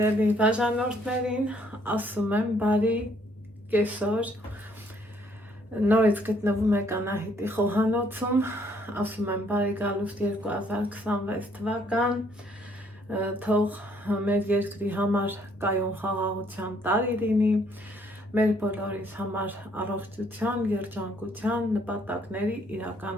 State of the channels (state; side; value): normal; both; correlation 0.66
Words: բաժանորդներին ասում եմ բարի կեսօր, նորից գտնվում եք Անահիտի խոհանոցում, ասում եմ բարի գալուստ 2026 թվական, թող մեր երկրի համար կայուն խաղաղության տարի լինի, մեր բոլորիս համար առողջության, երջանկության, նպատակների